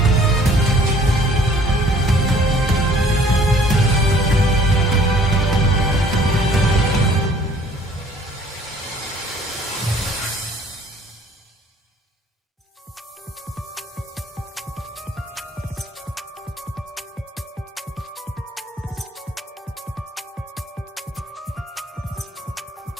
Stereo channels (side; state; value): both; normal; correlation 0.56